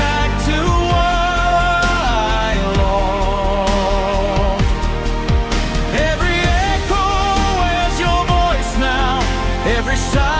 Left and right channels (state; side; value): identical; both; correlation 1.00